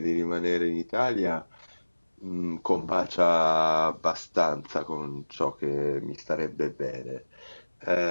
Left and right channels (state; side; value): inverted; both; correlation -1.00